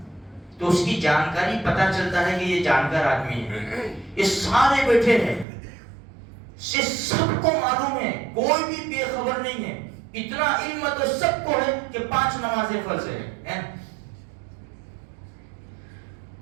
تو اس کی جانکاری پتہ چلتا ہے کہ یہ جانکار آدمی ہے۔ یہ سارے بیٹھے ہیں، یہ سب کو معلوم ہے، کوئی بھی بے خبر نہیں ہے۔ اتنا علم تو سب کو ہے کہ 5 نمازیں فرض ہے۔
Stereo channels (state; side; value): drops out; left; at 5.5 s